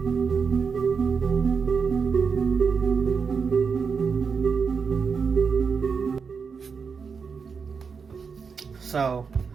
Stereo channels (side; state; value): left; quieter; 5.7 dB